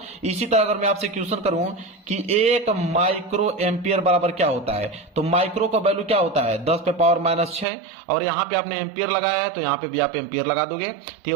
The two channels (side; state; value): left; drops out; at 7.7 s